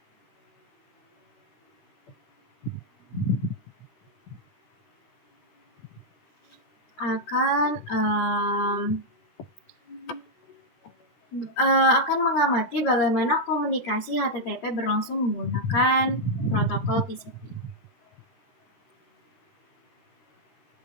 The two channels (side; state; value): right; late; 13 ms